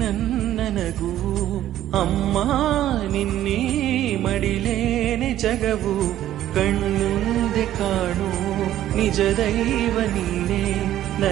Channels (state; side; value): quieter; left; 12.7 dB